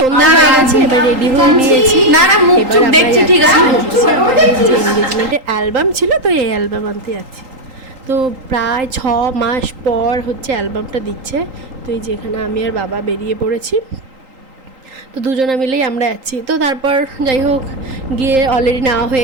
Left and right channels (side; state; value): left; late; 3.8 ms